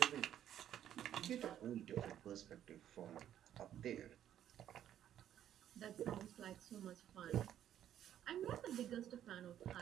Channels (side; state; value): left; quieter; 10.8 dB